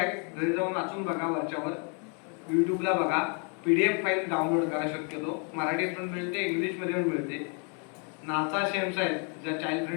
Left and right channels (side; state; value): right; quieter; 38.3 dB